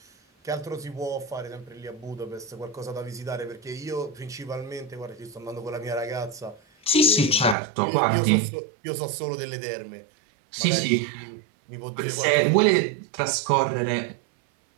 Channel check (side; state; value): left; drops out; at 7.6 s